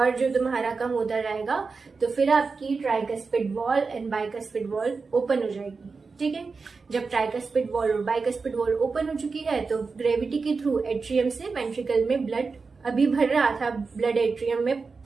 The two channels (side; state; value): left; quieter; 4.5 dB